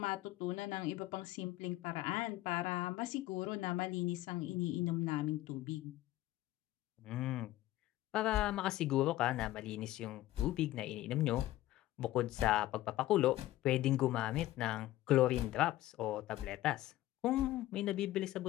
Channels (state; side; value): quieter; right; 15.5 dB